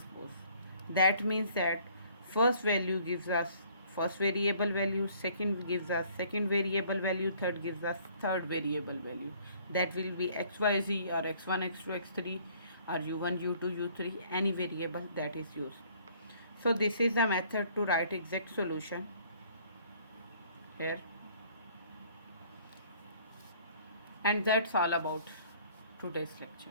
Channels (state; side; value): inverted; both; correlation -0.58